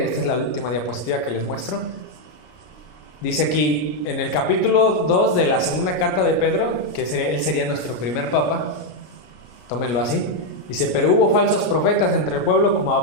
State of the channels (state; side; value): late; right; 33 ms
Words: esta es la última diapositiva que les muestro. Dice aquí en el capítulo 2 de la segunda carta de Pedro, que él sería nuestro primer papa, tómenlo así, dice: pero hubo falsos profetas entre el pueblo, como